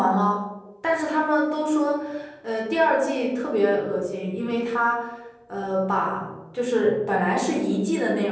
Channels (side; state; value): both; identical; correlation 1.00